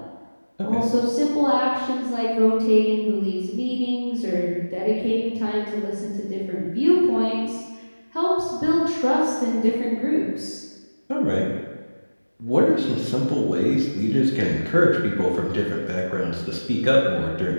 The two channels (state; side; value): inverted; both; correlation -1.00